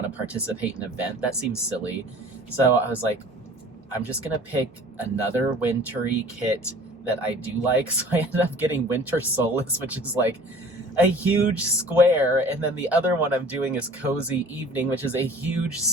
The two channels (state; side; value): normal; both; correlation 0.47